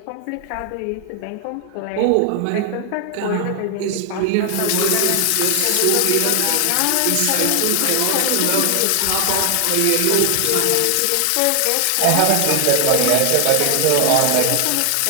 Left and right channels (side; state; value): both; different; correlation 0.00